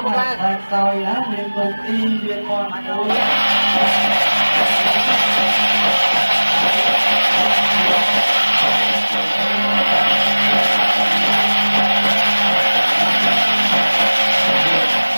ែក្រោយណាមានគុំទីមានមន់មួយ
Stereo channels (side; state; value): both; inverted; correlation -1.00